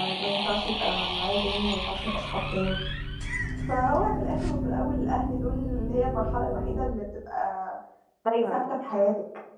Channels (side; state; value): both; identical; correlation 1.00